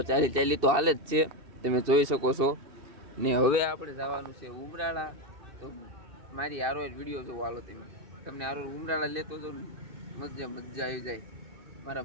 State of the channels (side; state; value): left; late; 2.7 ms